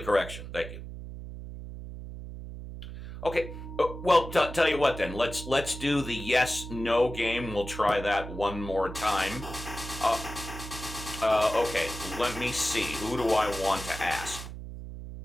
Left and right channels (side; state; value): right; noise; hum, 10 dB below the sound